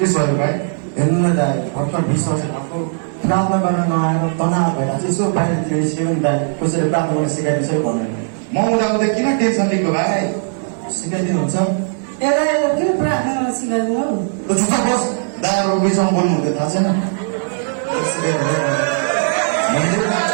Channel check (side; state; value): left; silent; 67 dB below the other